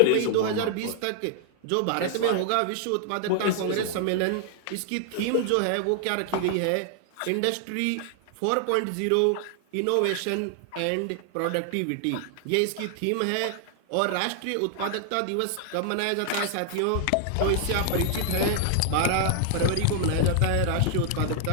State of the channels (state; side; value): different; both; correlation 0.00